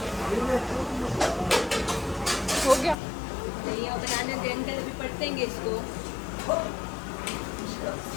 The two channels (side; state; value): right; drops out; at 3.0 s